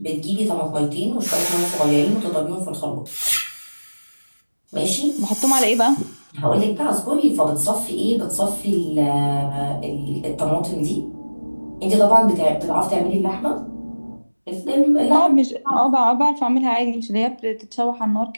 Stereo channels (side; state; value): both; inverted; correlation -1.00